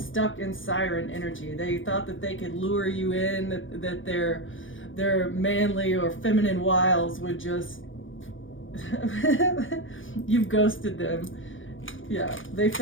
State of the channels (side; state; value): right; late; 0.57 ms